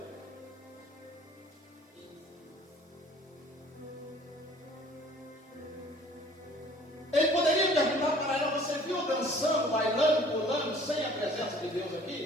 Ele poderia perguntar para ela: você viu dançando, bailando, pulando, sem a presença de Deus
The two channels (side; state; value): both; normal; correlation 0.52